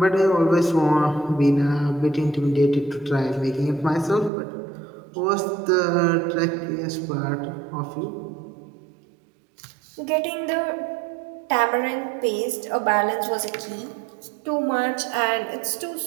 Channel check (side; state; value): left; drops out; at 4.3 s